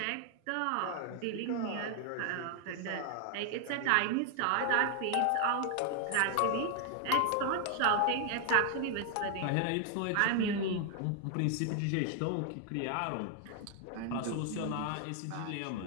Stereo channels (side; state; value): both; different; correlation 0.00